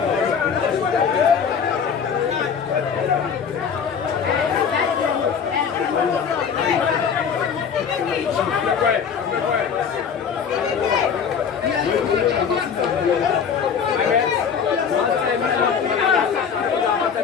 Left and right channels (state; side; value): quieter; right; 6.9 dB